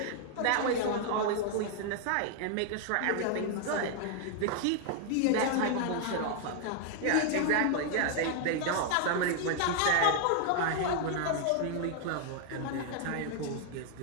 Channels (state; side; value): different; both; correlation 0.00